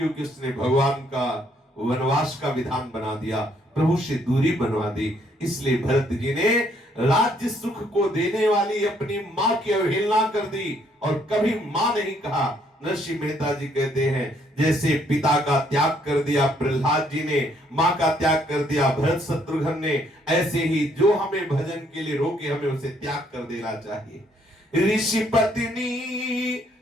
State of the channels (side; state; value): both; normal; correlation 0.68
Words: उसने भगवान का वनवास का विधान बना दिया, प्रभु से दूरी बनवा दी। इसलिए भरत जी ने राज्य सुख को देने वाली अपनी मां की अवहेलना कर दी और कभी मां नहीं कहा। नरसिंह मेहता जी कहते हैं, जैसे पिता का त्याग कर दिया प्रहलाद जी ने, मां का त्याग कर दिया भरत शत्रुघ्न ने, ऐसे ही जो हमें भजन के लिए रोके हमें उसे त्याग कर देना चाहिए। ऋषि पत्नी